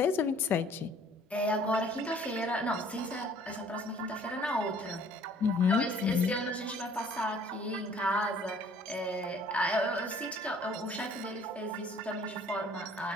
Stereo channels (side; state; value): both; normal; correlation 0.56